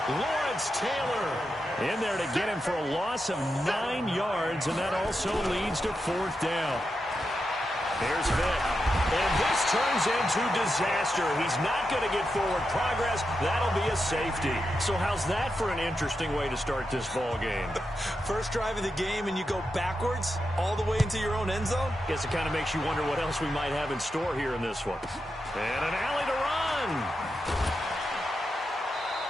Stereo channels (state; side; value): normal; both; correlation 0.87